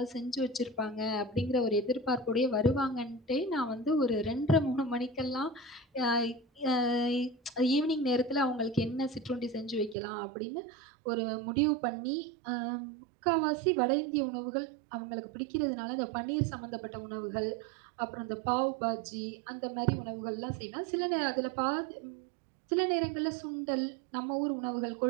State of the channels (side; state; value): left; drops out; at 10.0 s